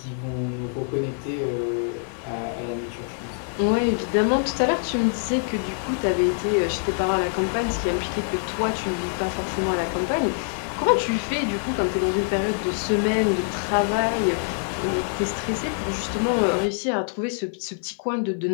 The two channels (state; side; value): silent; right; 60 dB below the other